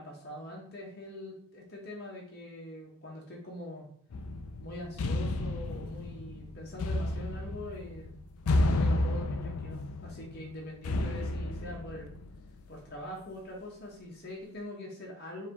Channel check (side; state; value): both; normal; correlation 0.75